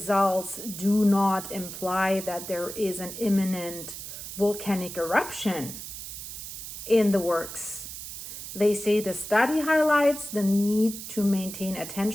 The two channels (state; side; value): noise; right; hiss, 9 dB below the sound